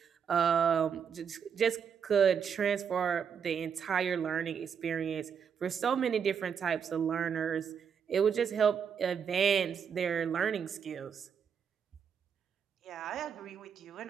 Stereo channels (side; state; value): left; quieter; 7.1 dB